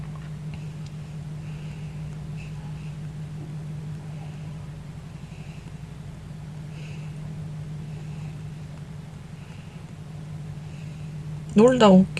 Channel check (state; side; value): identical; both; correlation 1.00